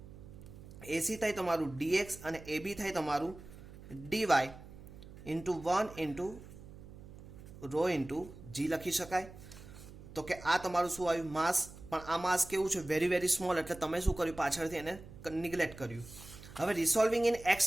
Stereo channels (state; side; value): noise; right; hum, 16 dB below the sound